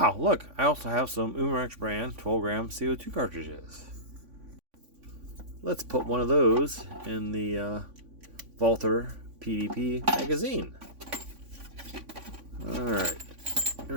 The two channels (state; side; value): late; left; 3.5 ms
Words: look, I also have some Umarex brand 12 gram CO2 cartridges. Let's put one of those in the Walther PDP magazine. Alright, here